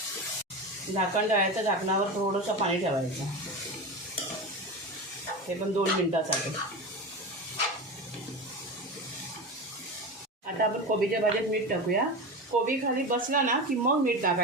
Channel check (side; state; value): both; normal; correlation 0.24